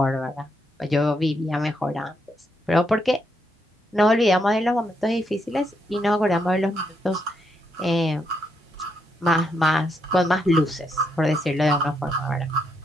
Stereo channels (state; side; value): normal; both; correlation 0.78